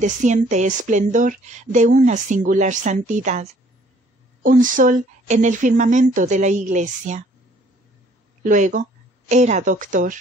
esplendor de una singular santidad, un sol en el firmamento de la Iglesia. Luego era doctor,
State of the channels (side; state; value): both; normal; correlation 0.59